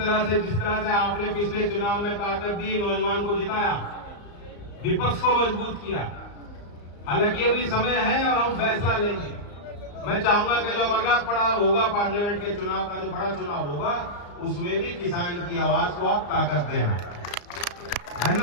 से जिस तरह से आपने पिछले चुनाव में ताकत दी, नौजवान को जिताया, विपक्ष को मजबूत किया, हालांकि अभी समय है और हम फैसला लेंगे। मैं चाहूंगा कि जो अगला पड़ाव होगा, पार्लियामेंट के चुनाव का जो बड़ा चुनाव होगा, उसमें भी किसान की आवाज को आप ताकत देना।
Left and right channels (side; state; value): right; late; 34 ms